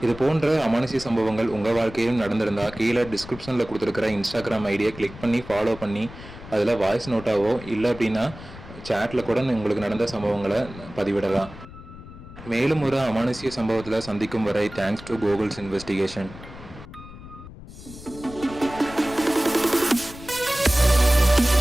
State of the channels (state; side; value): noise; left; rumble, 16 dB below the sound